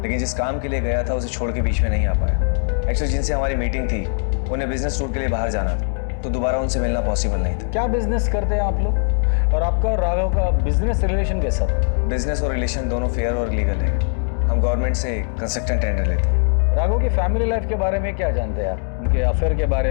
लेकिन जिस काम के लिए गया था उसे छोड़ के बीच में नहीं आ पाया। एक्चुअली जिनसे हमारी मीटिंग थी उन्हें बिजनेस टूर के लिए बाहर जाना था, तो दोबारा उनसे मिलना पॉसिबल नहीं था। क्या बिजनेस करते हैं आप लोग? और आपका और राघव का बिजनेस रिलेशन कैसा था? बिजनेस और रिलेशन दोनों फेयर और लीगल है। हम गवर्नमेंट से कंस्ट्रक्शन टेंडर लेते हैं। राघव की फैमिली लाइफ के बारे में क्या जानते हैं आप? उनके अफेयर के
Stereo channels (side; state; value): right; silent; 61 dB below the other